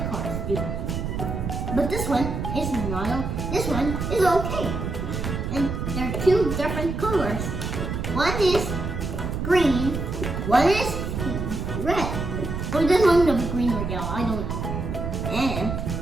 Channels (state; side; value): noise; right; rumble, 3 dB below the sound